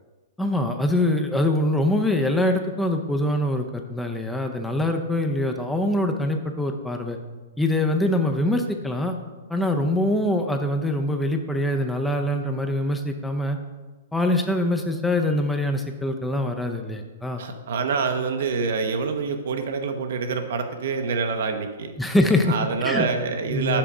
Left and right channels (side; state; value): both; normal; correlation 0.34